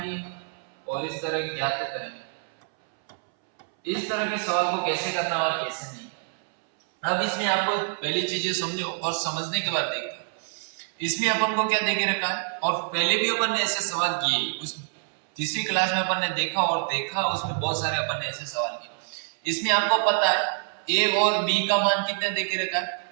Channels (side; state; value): left; silent; 61 dB below the other